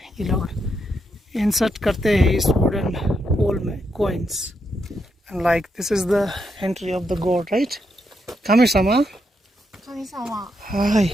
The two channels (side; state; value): both; normal; correlation 0.81